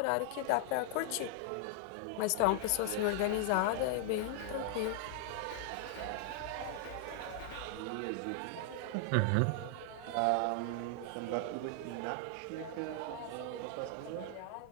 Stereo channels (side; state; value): both; different; correlation 0.00